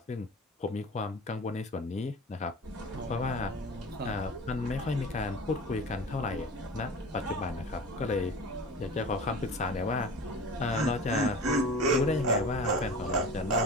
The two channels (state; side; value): normal; both; correlation 0.35